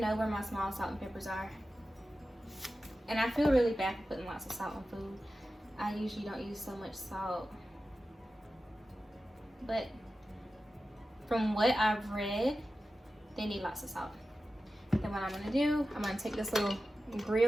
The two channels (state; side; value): normal; both; correlation 0.93